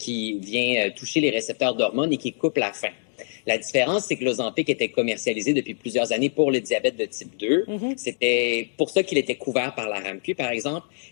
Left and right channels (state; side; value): silent; right; digital silence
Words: vient toucher les récepteurs d'hormones et qui coupe la faim. La différence, c'est que l'Ozempic était commercialisé depuis plusieurs années pour le diabète de type 2. C'était pour ça qu'il était couvert par la RAMQ, par exemple.